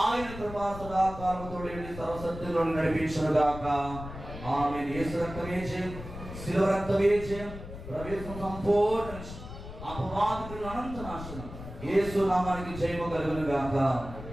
ఆయన కృపా సదాకాలముతో సర్వసత్యంలో నడిపించును గాక. ఆమేన్. యేసు రక్తమే జయం, శిలువ రక్తమే జయం, ప్రవేశం సంపూర్ణ అపవాదికుల అనంత నాశనం. యేసు నామానికి జయము కలుగును గాక.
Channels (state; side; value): noise; left; rumble, 11 dB below the sound